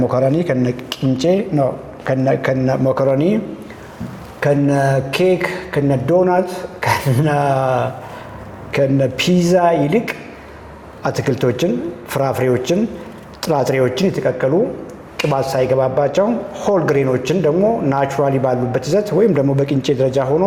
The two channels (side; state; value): both; identical; correlation 1.00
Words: ሞኮሮኒ፣ ከነ ቂንጬ ነው፣ ከነ ሞኮሮኒ፣ ከነ ኬክ፣ ከነ ዶናት፣ ከነ ፒዛ ይልቅ አትክልቶችን፣ ፍራፍሬዎችን፣ ጥራጥሬዎችን የተቀቀሉ ቅባት ሳይገባባቸው ሆል ግሬኖችን ደግሞ ናቹራሊ ባሉበት ይዘት ወይም ደግሞ በቂንጬ ደረጃ ሆኖ